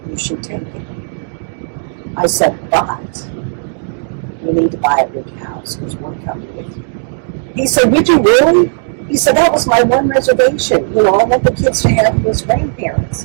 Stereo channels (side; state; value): left; silent; digital silence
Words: you should take it. I said, but you need to buy a big house because we're coming with you. He said, would you really? He said, that was my one reservation. I want the kids to have you as